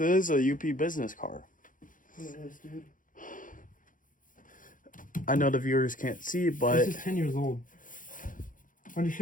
UP business car. It is, dude. I know the viewers can't see, but This is 10 years old.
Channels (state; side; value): late; right; 0.39 ms